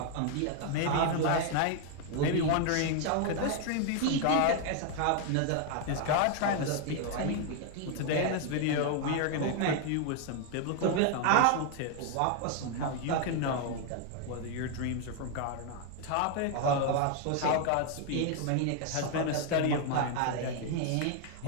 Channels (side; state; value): both; different; correlation 0.00